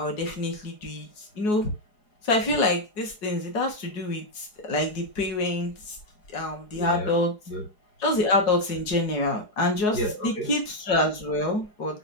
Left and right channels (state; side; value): late; right; 4.8 ms